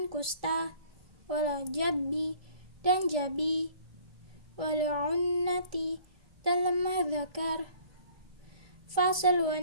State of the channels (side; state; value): left; late; 1.8 ms